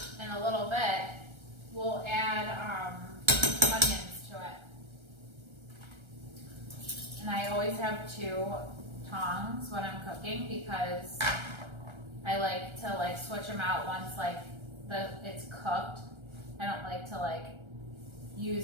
in a little bit, we'll add onions to it. And I always have 2 tongs when I'm cooking because I like to switch them out once it's cooked. I don't like to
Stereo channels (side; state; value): left; late; 1.3 ms